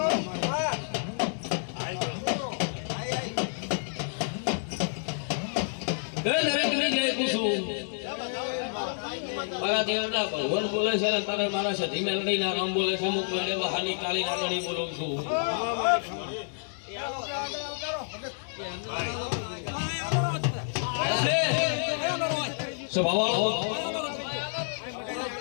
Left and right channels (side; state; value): right; silent; digital silence